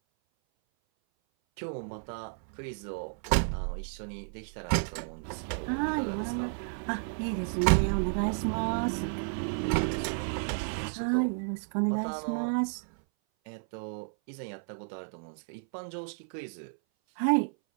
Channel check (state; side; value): silent; left; 57 dB below the other